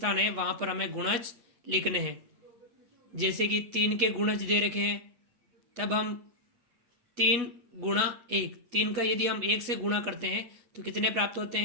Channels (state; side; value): late; left; 8.2 ms